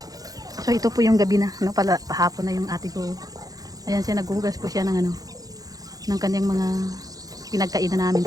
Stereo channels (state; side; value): late; left; 0.18 ms